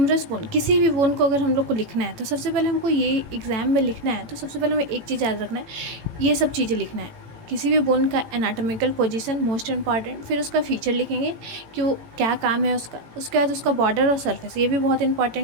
बोन, किसी भी बोन को अगर हम लोग को लिखना है तो सबसे पहले हमको ये एग्ज़ाम में लिखना है तो सबसे पहले हमें एक चीज़ याद रखना है, ये सब चीज़ें लिखना है। किसी भी बोन का एनाटॉमिकल पोजीशन मोस्ट इम्पॉर्टेंट, फिर उसका फीचर लिखेंगे कि वो क्या काम है उसका। उसके बाद उसका बॉर्डर और सरफेस, ये भी बहुत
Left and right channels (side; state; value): left; late; 18 ms